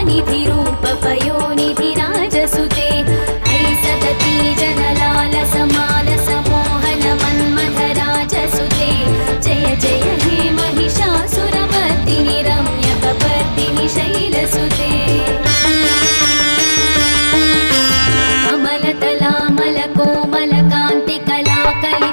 रूपपयोनिधिराजसुते ऐसदती जनलाल समाल समोहन मन्मथराजसुते जय जय हे महिषासुरमर्दिनि रम्यकपर्दिनि शैलसुते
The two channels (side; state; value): both; inverted; correlation -1.00